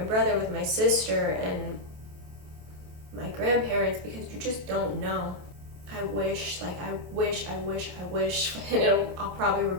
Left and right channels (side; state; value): left; late; 28 ms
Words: brother, with my sister, and my grandparents, because you just don't know. I wish, and I'll probably